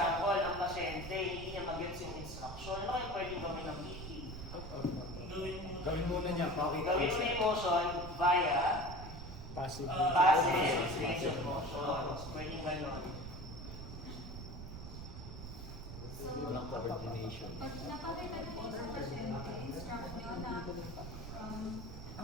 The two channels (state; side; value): noise; right; rumble, 9 dB below the sound